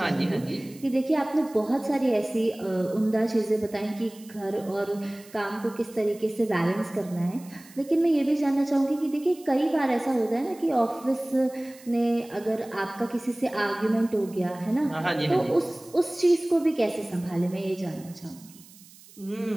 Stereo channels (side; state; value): right; noise; hiss, 23 dB below the sound